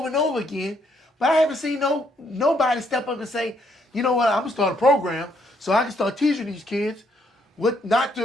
and over again. But I haven't seen nobody step up and say, you know what, I'm going to start a program so I can start teaching these kids what not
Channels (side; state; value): both; normal; correlation 0.71